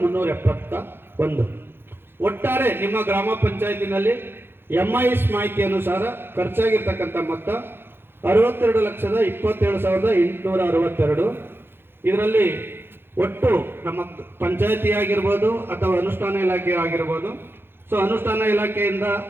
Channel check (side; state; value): left; late; 0.10 ms